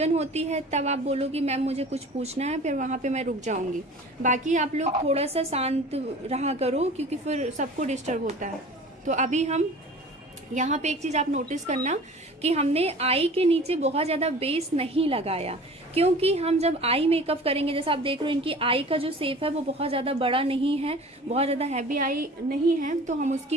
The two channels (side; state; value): both; normal; correlation 0.42